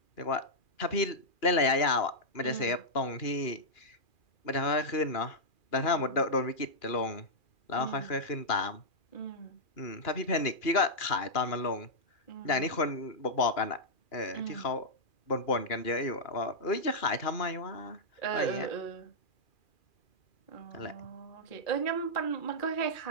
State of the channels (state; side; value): late; right; 2.4 ms